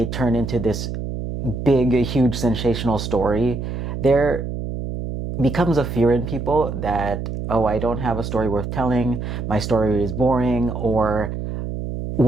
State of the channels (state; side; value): noise; right; hum, 5 dB below the sound